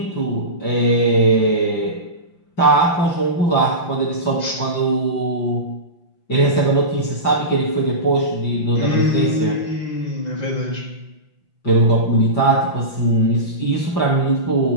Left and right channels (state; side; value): late; right; 5.8 ms